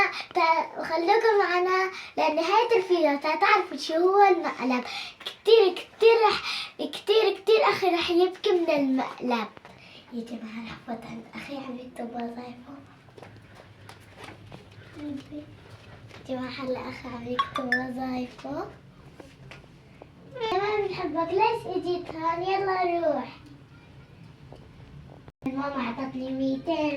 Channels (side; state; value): both; identical; correlation 1.00